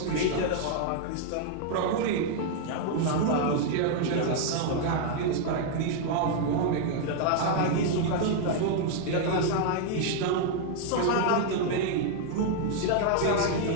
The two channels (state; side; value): different; both; correlation 0.00